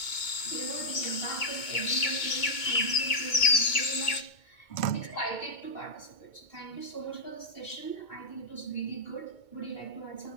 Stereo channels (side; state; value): right; late; 2.2 ms